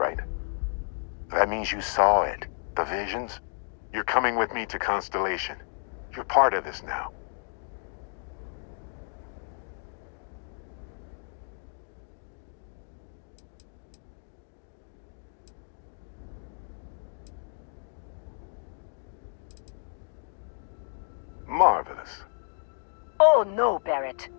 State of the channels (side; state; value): right; silent; 57 dB below the other